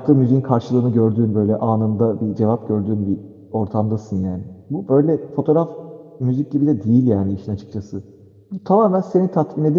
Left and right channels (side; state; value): both; identical; correlation 1.00